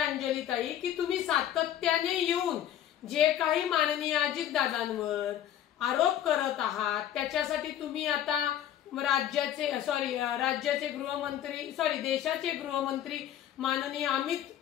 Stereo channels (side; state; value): right; quieter; 11.1 dB